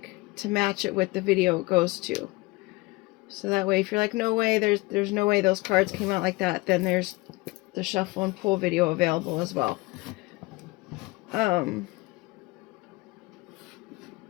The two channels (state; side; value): quieter; right; 23.2 dB